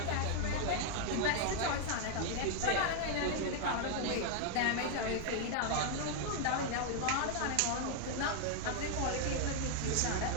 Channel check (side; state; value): both; different; correlation 0.00